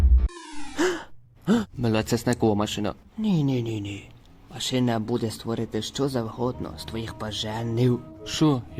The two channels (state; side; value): identical; both; correlation 1.00